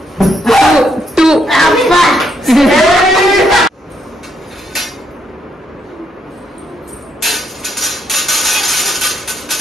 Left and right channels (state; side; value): normal; both; correlation 0.75